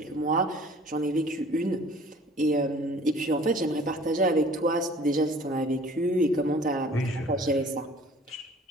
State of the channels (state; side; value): normal; both; correlation 0.51